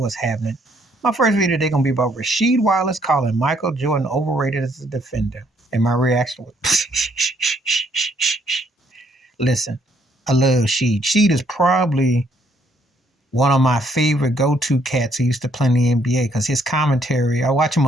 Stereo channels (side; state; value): both; normal; correlation 0.68